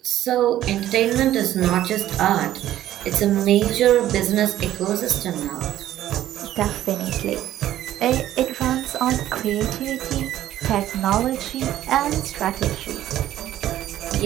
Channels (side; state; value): left; quieter; 12.9 dB